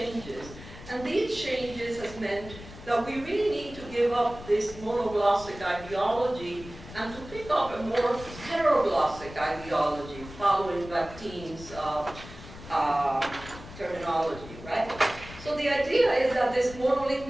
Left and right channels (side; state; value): left; noise; rumble, 15 dB below the sound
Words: and these changes has meant that we really need to give up this monoglossic ideology and to pick up a more heteroglossic ideology following Bakhtin's terminology, right? So the idea is that this